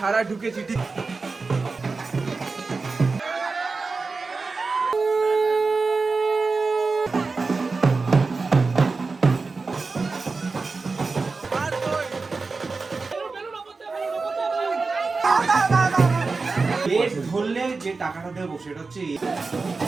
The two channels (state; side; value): quieter; left; 4.1 dB